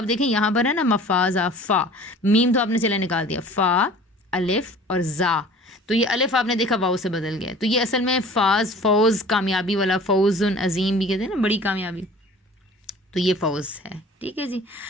دیکھیں یہاں پر ہے نا مفازہ، فا میم تو آپ نے چلے نکال دیا، فا الف اور زا، تو یہ الف آپ نے دیکھا واو سے بدل گیا، تو یہ اصل میں فاز، فوز، کامیابی والا، فوز عظیم بھی کہتے ہیں نا، بڑی کامیابی، تو یہ فوز ہے، ٹھیک ہے جی۔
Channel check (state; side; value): normal; both; correlation 0.45